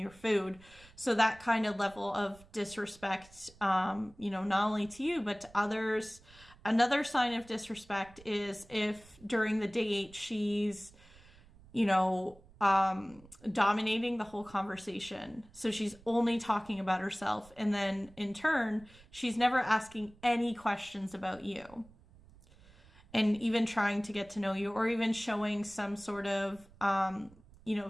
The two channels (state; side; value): noise; right; rumble, 24 dB below the sound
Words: your food. So that kind of level of disrespect, not only to you, but to others. Another sign of disrespect is if during the date she's, dominating the whole conversation. So she's only talking about herself. And then in turn, she's never asking any questions about you. And even trying to get to know you, or even showing some sort of,